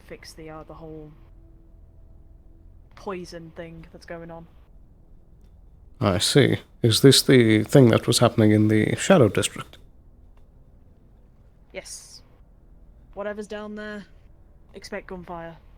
fix the whole poison thing that's going on. I see. Is this the thing that was happening in the Shadow District? Yes. Whatever's down there, expect gunfire,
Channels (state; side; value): identical; both; correlation 1.00